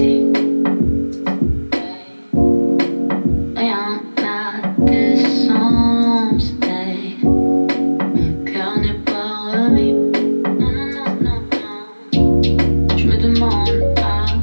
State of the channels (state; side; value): inverted; both; correlation -1.00